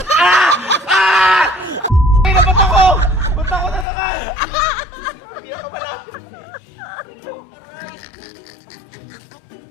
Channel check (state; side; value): drops out; right; at 3.9 s